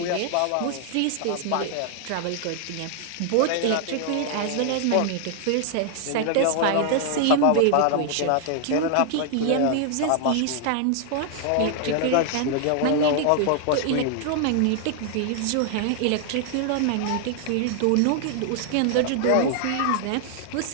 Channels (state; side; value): different; both; correlation 0.00